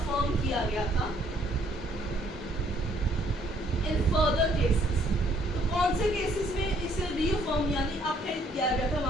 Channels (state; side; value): normal; both; correlation 0.65